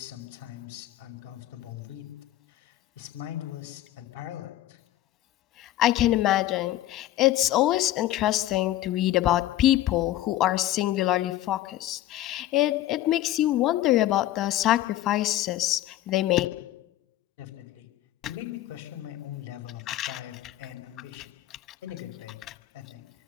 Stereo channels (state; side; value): quieter; right; 14.2 dB